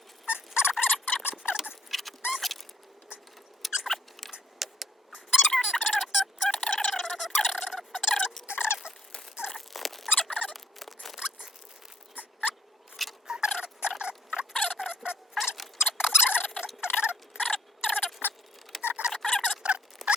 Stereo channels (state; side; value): normal; both; correlation 0.63